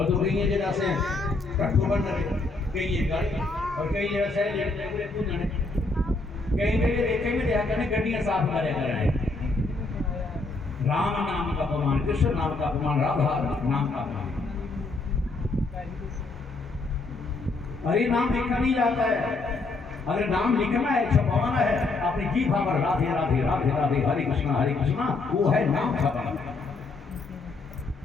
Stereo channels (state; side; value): quieter; right; 3.5 dB